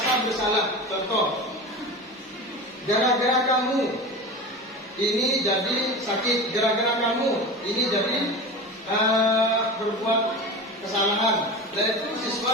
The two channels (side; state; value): both; normal; correlation 0.29